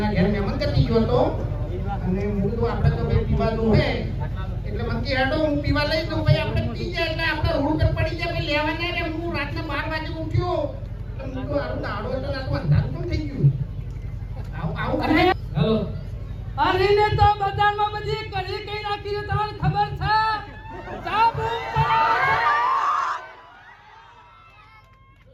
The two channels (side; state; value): both; identical; correlation 1.00